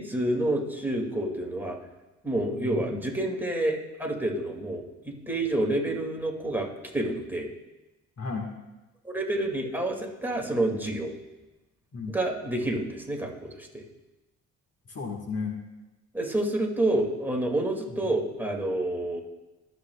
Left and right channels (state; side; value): normal; both; correlation 0.67